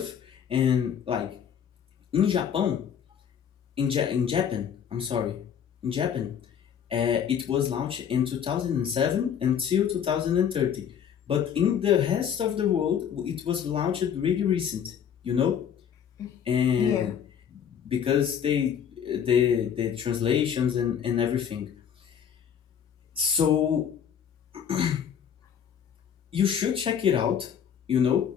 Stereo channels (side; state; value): right; quieter; 8.3 dB